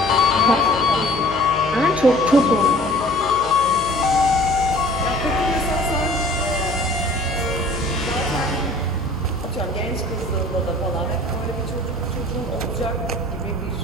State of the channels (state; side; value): noise; left; hum, 15 dB below the sound